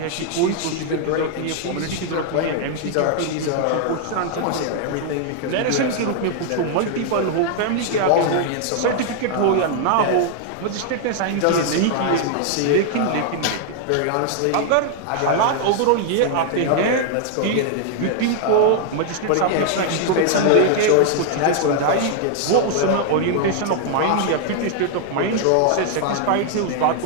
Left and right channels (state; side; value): different; both; correlation 0.00